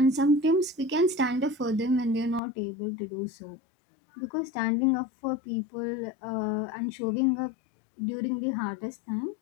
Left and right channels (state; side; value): drops out; right; at 2.4 s